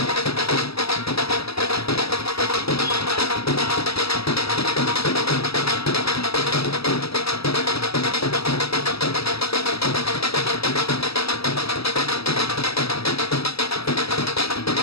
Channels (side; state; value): right; late; 0.77 ms